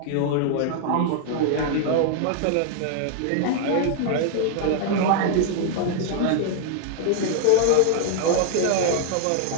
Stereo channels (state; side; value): different; both; correlation 0.00